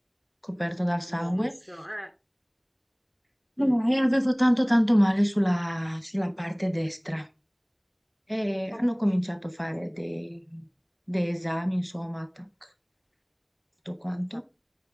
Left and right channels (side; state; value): both; identical; correlation 1.00